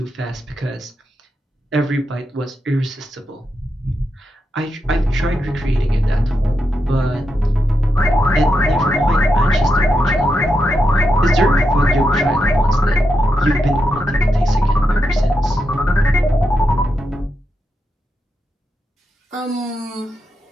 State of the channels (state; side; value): normal; both; correlation 0.85